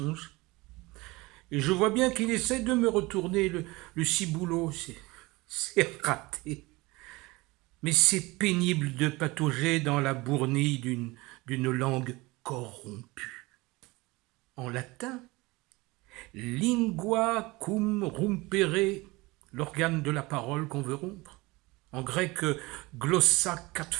et je vois bien qu'il essaie de me retourner le ciboulot. C'est raté. Mais c'est pénible de patauger dans la bournille d'une langue corrompue. En latin, lingua cum rompere, l'organe de la parole qu'on veut rompre. En grec, glossa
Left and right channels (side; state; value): left; quieter; 22.5 dB